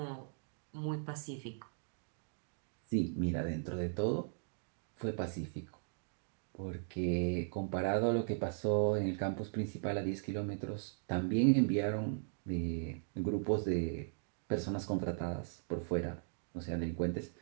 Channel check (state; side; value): silent; left; digital silence